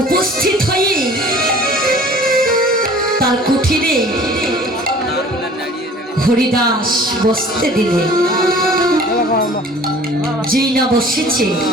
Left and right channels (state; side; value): normal; both; correlation 0.48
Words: উপস্থিত হয়ে তার কুঠিরে হরিদাস বসতে দিলে। যেই না বসেছে